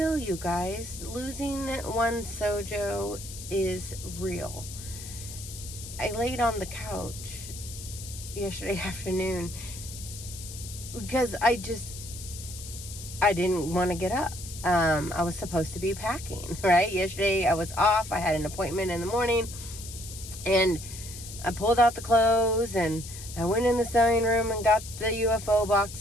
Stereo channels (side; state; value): left; noise; hiss, 12 dB below the sound